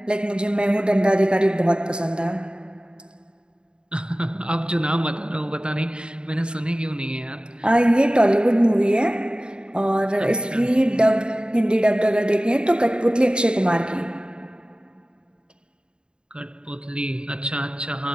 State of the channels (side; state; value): left; late; 0.051 ms